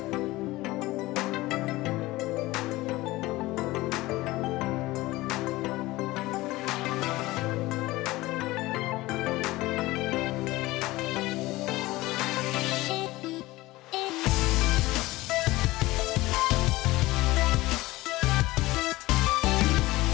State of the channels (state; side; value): quieter; right; 19.2 dB